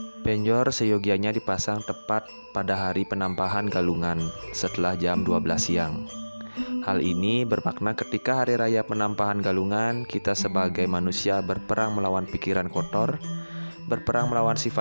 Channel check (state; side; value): inverted; both; correlation -1.00